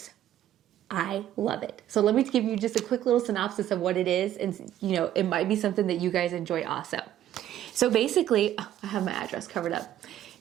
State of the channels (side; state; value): left; quieter; 11.9 dB